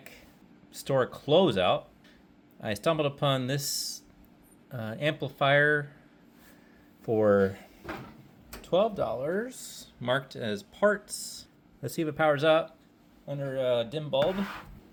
store closeout. I stumbled upon this amplifier for $12, marked as parts. Let's see if it powers up under a dim bulb.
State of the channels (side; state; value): both; identical; correlation 1.00